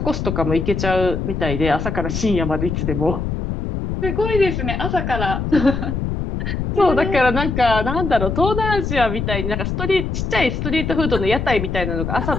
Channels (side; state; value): left; noise; rumble, 3 dB below the sound